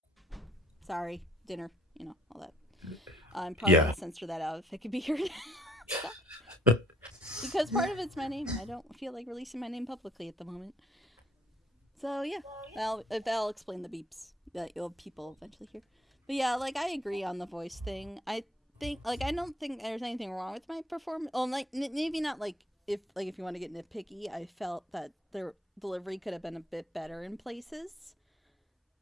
Sorry, dinner, you know, all that. I'm probably going to censor that out if it could be heard. Because part of it's my name. I don't feel like releasing my name publicly at the moment. So yeah, I'll explain the beeps that you'll people eventually hear. But yeah, like, I agree on the voice thing. I think, like, I don't think there's anything wrong with my performance. Well, like, maybe not, like, if you want to get nitpicky, I felt that their delivery could have been a bit better in places.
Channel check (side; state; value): both; normal; correlation 0.63